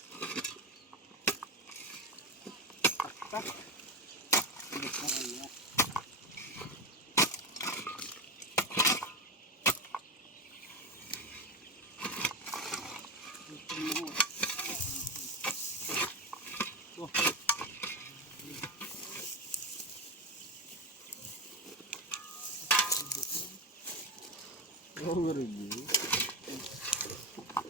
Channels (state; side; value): normal; both; correlation 0.17